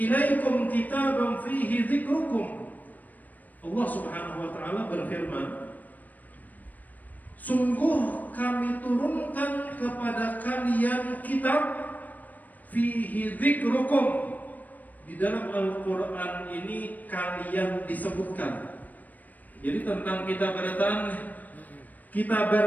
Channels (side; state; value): right; late; 0.081 ms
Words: ilaikum kitaban fihi dzikrukum. Allah Subhanahu wa Ta'ala berfirman, sungguh kami turunkan kepada kalian kitab fihi dzikrukum. Di dalam Al-Quran ini kalian disebutkan. Jadi tentang kita